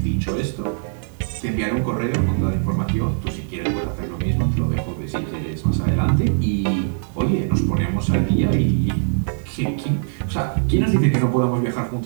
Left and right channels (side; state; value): left; silent; digital silence